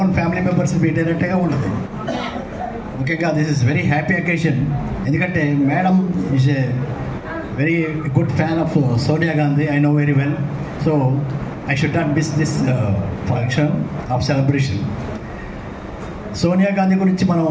ఫ్యామిలీ మెంబర్స్ మీట్ అయినట్టుగా ఉండదు. ముఖ్యంగా this is very happy occasion. ఎందుకంటే madam is a very good fan of Sonia Gandhi, I know very well. So I should not miss this function of celebration. Sonia Gandhi గురించి మనం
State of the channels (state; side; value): identical; both; correlation 1.00